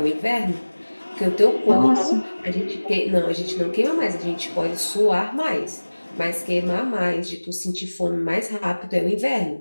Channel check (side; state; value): both; inverted; correlation -1.00